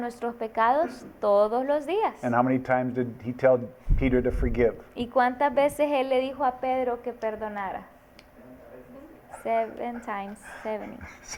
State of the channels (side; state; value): both; identical; correlation 1.00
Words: pecados todos los días. And how many times did he tell Peter to forgive? ¿Y cuántas veces Él le dijo a Pedro que perdonara? 7 times 70.